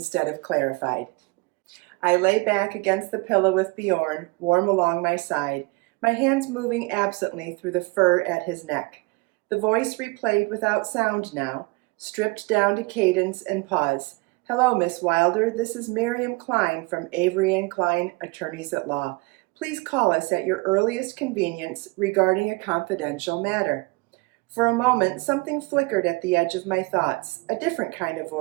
of clarified. I lay back against the pillow with Bjorn, warm along my side, my hands moving absently through the fur at his neck. The voice replayed without sound now, stripped down to cadence and pause. Hello, Miss Wilder. This is Miriam Klein from Avery & Klein, Attorneys at Law. Please call us at your earliest convenience regarding a confidential matter. For a moment, something flickered at the edge of my thoughts, a different kind of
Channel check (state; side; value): quieter; left; 25.9 dB